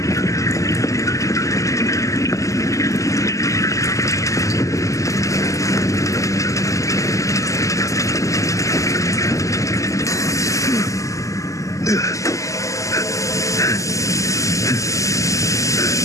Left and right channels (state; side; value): late; right; 0.16 ms